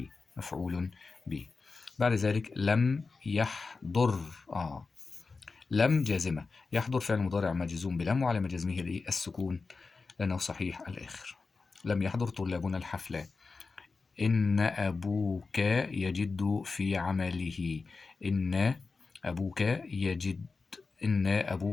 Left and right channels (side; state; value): right; quieter; 4.3 dB